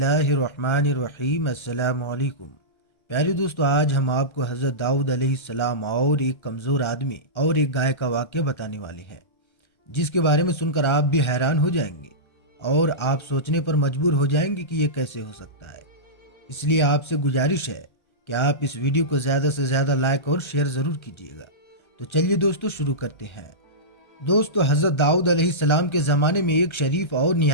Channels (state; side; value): late; right; 1.3 ms